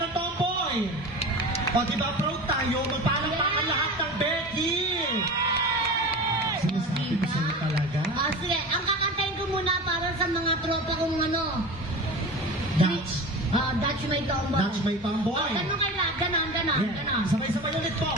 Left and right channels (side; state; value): both; normal; correlation 0.32